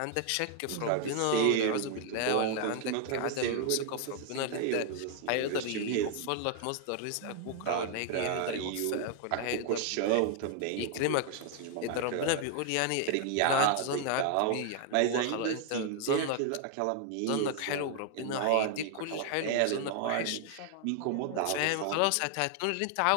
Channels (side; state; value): both; different; correlation 0.00